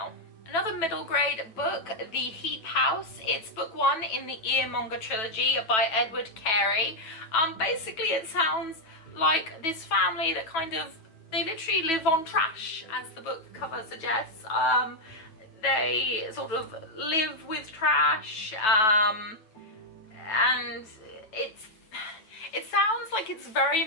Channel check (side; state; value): right; late; 9.2 ms